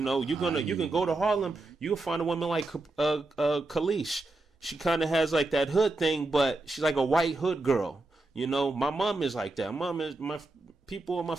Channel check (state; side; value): quieter; left; 3.0 dB